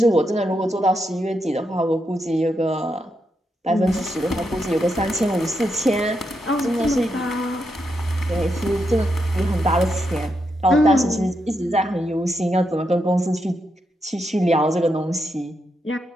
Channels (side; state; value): both; normal; correlation 0.83